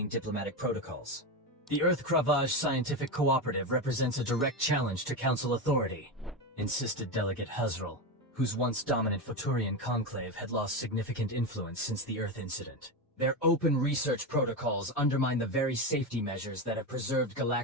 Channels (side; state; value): both; normal; correlation 0.15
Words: diplomatic protocols. The Earth Cravage Scientific Cooperative represents a direct challenge to Council authority, insisted Delegate Huzrul, whose once dominant Futurian conclave had lost significant influence since the Earth incident. Their open research protocols undermine the very safety measures that have preserved